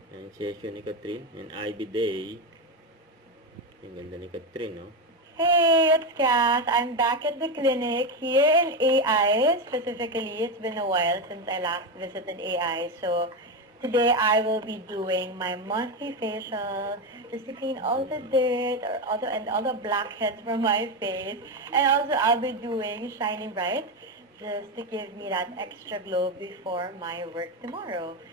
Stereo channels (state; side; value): normal; both; correlation 0.12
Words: Ang session ni Catherine. And IB Day. Ang ganda ni Catherine, no? Hey, it's Cass. I'm back at the clinic here in AI. Specifically, it's been a while since I last visited AI. So today I will be doing my monthly facial just to clean all the dirt or all the blackheads from my face. And also I'll be doing Shining Bright just to give me that extra glow before my work tomorrow.